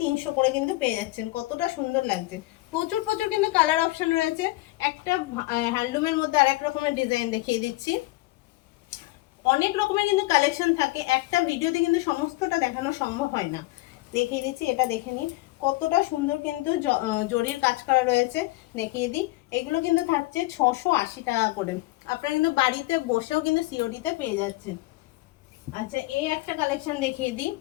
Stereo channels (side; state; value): right; quieter; 20.4 dB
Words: করে কিন্তু পেয়ে যাচ্ছেন। কতটা সুন্দর লাগছে, প্রচুর প্রচুর কিন্তু কালার অপশন রয়েছে। একটা হ্যান্ডলুমের মধ্যে আর এক রকমের ডিজাইন দেখিয়ে দিচ্ছি, অনেক রকমের কিন্তু কালেকশন থাকে, একটা ভিডিওতে কিন্তু সমস্তটা দেখানো সম্ভব হয় না। দেখিয়ে দিচ্ছি, এটা দেখে নিন কতটা সুন্দর কিন্তু জরির কাজ করা রয়েছে, দেখিয়ে দিই। এগুলো কিন্তু থাকছে 680 টাকা করে, আপনারা কিন্তু বাড়িতে বসেও কিন্তু সিওডিতে পেয়ে যাচ্ছেন। আচ্ছা, এই একটা কালেকশন দেখিয়ে দিই,